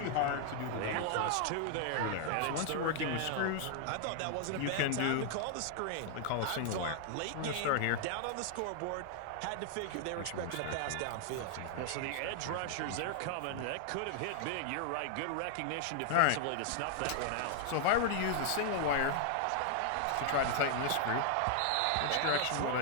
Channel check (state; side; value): different; both; correlation 0.00